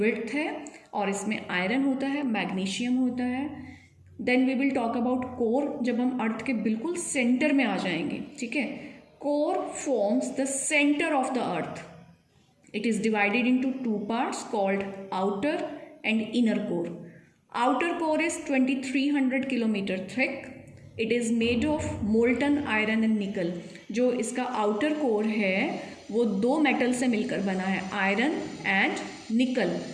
है और इसमें आयरन होता है, मैग्नीशियम होता है। Then we will talk about core, जब हम अर्थ के बिल्कुल सेंटर में आ जाएंगे, ठीक है। Core forms the centre of the earth. It is divided into 2 parts called outer and inner core. Outer core is 2300 kilometre thick. It is made of molten iron and निकल। जो इसका आउटर कोर है वो 2 metal से मिलकर बना है, iron and निकल।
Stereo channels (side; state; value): both; identical; correlation 1.00